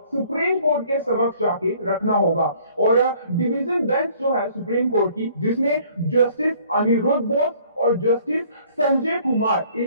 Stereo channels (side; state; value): both; inverted; correlation -0.58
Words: सुप्रीम कोर्ट के समक्ष जाके रखना होगा। और डिवीजन बेंच जो है सुप्रीम कोर्ट की, जिसमें जस्टिस अनिरुद्ध बोस और जस्टिस संजय कुमार,